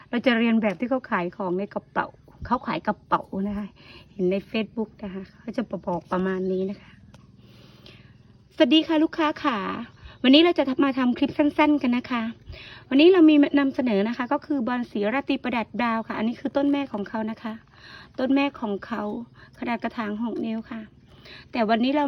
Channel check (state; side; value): identical; both; correlation 1.00